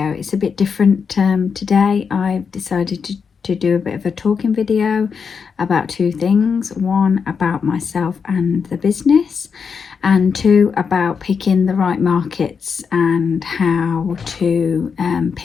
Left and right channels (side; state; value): right; quieter; 6.0 dB